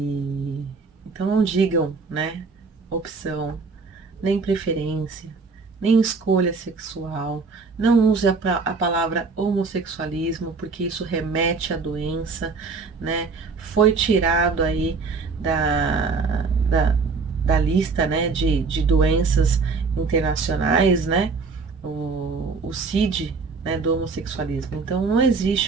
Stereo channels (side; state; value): left; quieter; 4.5 dB